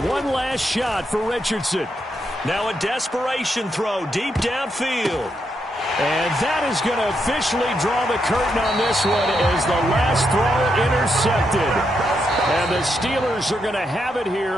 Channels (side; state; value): both; normal; correlation 0.81